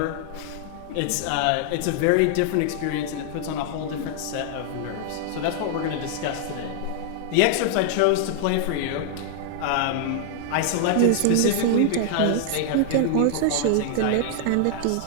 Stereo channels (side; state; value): both; different; correlation 0.00